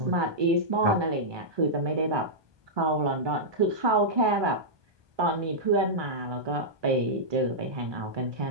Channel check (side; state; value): left; late; 1.2 ms